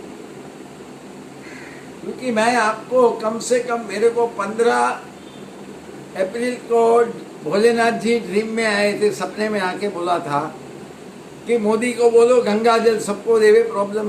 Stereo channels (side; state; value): both; identical; correlation 1.00